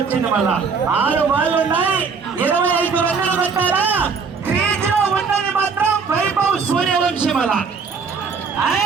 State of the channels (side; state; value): left; quieter; 5.4 dB